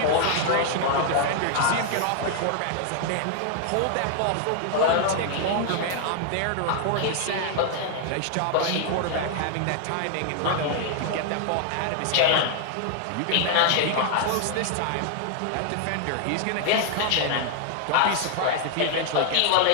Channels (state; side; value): different; both; correlation 0.00